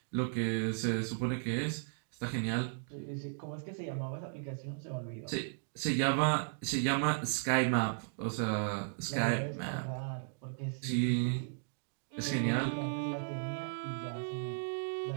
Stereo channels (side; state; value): left; silent; digital silence